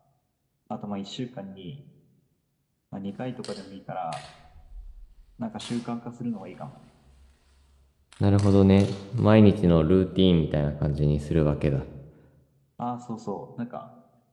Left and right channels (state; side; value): identical; both; correlation 1.00